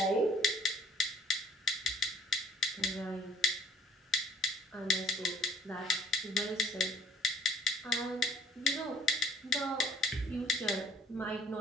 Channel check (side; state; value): both; normal; correlation 0.57